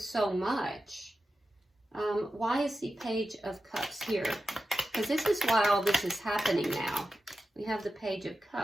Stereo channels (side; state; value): both; normal; correlation 0.92